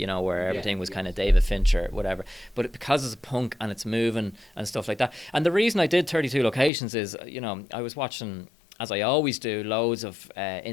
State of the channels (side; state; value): right; drops out; at 6.7 s